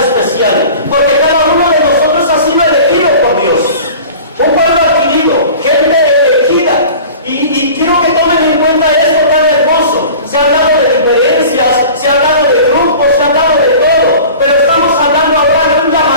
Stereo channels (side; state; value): both; inverted; correlation -0.41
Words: porque cada uno de nosotros ha sido elegido por Dios. Un pueblo adquirido, gente elegida. Y quiero que tomen en cuenta esto tan hermoso. Se ha hablado de diferencias, se ha hablado de grupos, se ha hablado de todo, pero estamos hablando ahora de un